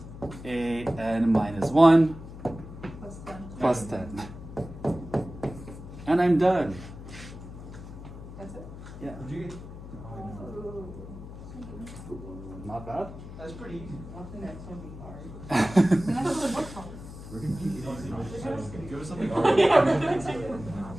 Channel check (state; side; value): noise; left; hum, 13 dB below the sound